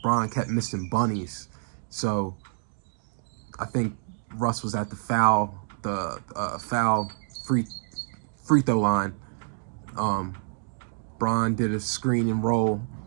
Bron kept missing bunnies. So I think Russ was at the foul free throw line. Bron did a screen and roll.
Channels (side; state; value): left; silent; digital silence